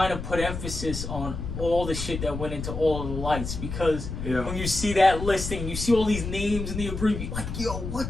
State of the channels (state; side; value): noise; left; rumble, 6 dB below the sound